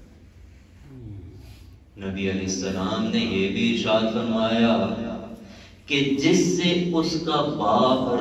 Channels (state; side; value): identical; both; correlation 1.00